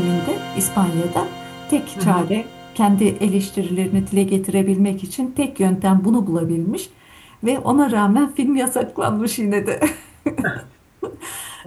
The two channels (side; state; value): both; identical; correlation 1.00